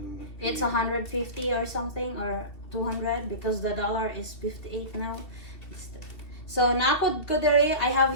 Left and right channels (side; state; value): right; late; 2.7 ms